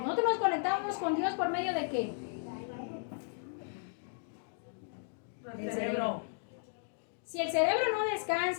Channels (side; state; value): right; silent; digital silence